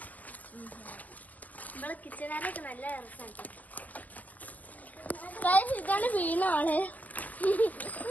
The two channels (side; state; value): right; late; 0.077 ms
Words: നമ്മളെ കിച്ചണാനൊക്കെ നല്ല രസമുണ്ട്. ഇതാണ് വീണാണ്.